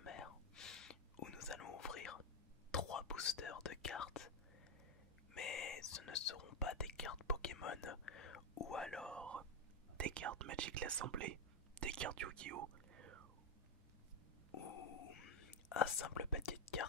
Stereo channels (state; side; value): normal; both; correlation 0.06